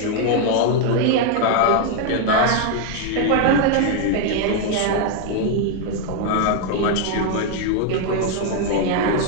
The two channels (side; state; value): both; different; correlation 0.00